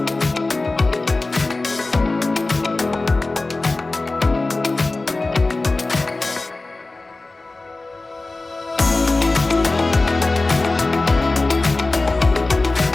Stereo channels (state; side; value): quieter; right; 3.2 dB